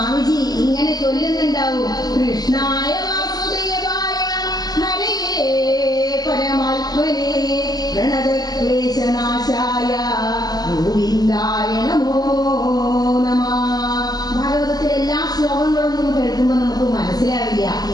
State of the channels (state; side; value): late; right; 0.19 ms